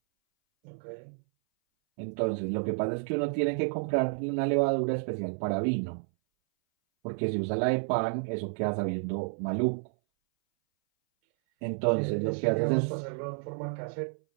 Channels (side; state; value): left; silent; 58 dB below the other